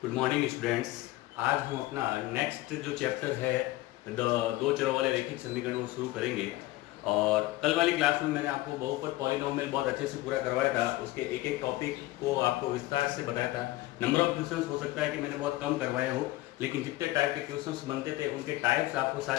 Good morning students. आज हम अपना नेक्स्ट जो चैप्टर है दो चरों वाले रैखिक समीकरण को शुरू करेंगे। और कल वाली क्लास में मैंने आपको बहुपद पॉलिनोमियल बहुत अच्छे से पूरा करवाया था, उसके एक एक टॉपिक को आपको विस्तार से बताया था। नंबर ऑफ क्वेश्चंस हो सकता है कि मैंने बहुत कम करवाया हो, लेकिन जितने टाइप के क्वेश्चंस बनते थे उनके टाइप्स आपको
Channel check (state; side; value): quieter; right; 17.9 dB